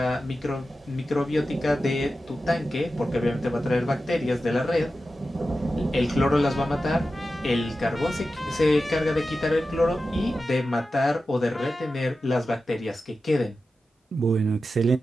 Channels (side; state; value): both; normal; correlation 0.92